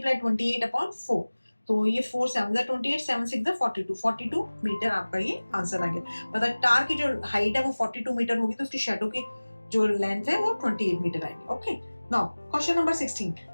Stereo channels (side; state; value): both; inverted; correlation -1.00